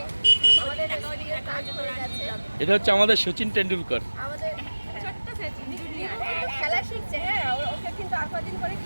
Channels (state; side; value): inverted; both; correlation -1.00